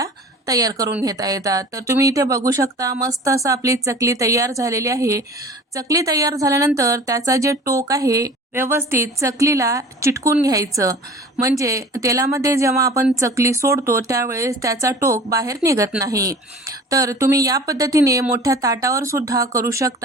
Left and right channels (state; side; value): normal; both; correlation 0.42